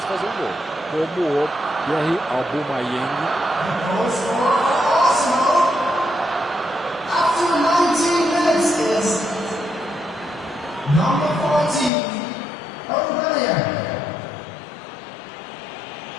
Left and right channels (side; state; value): right; drops out; at 11.9 s